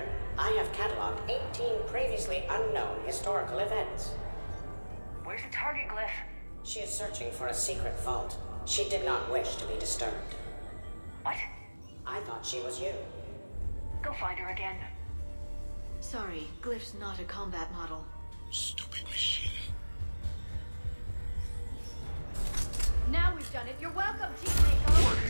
I have cataloged 18 previously unknown historical events. Where's the target glyph? She is searching for a secret vault. She did not wish to be disturbed. What? I thought she was you. Go find her again. Sorry, Glyph's not a combat model. Stupid machine. Now we've done it. You're welcome, Team Mako.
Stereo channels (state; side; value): inverted; both; correlation -1.00